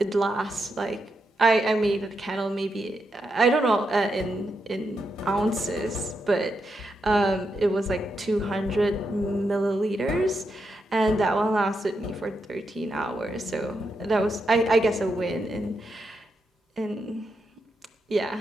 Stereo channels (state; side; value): normal; both; correlation 0.84